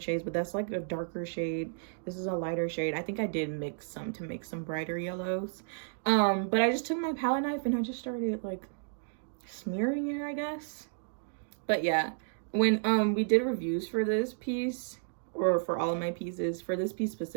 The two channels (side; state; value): left; silent; digital silence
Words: shades, but that's like a darker shade. This is a lighter shade. I think I did mix some to make some brighter yellows. But I just took my palette knife and I just started like smearing it, I guess. But yeah, when we did reviews for this piece, or for all of my pieces, for this piece